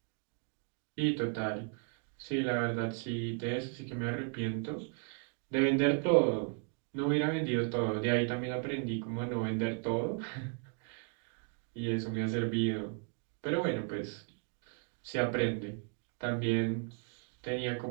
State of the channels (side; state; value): left; quieter; 39.9 dB